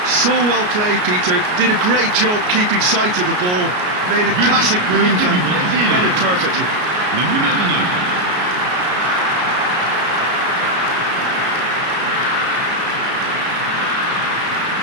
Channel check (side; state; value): left; late; 33 ms